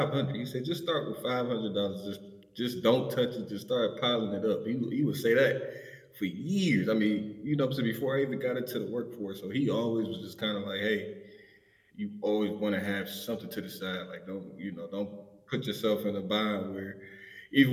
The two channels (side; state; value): both; identical; correlation 1.00